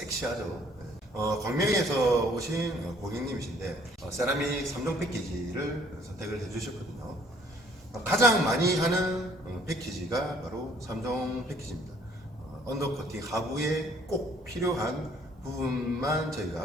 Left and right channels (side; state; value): both; normal; correlation 0.60